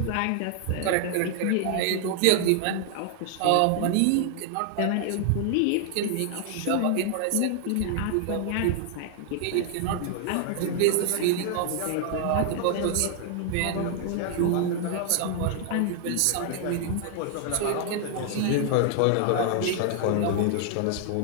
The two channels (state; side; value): different; both; correlation 0.00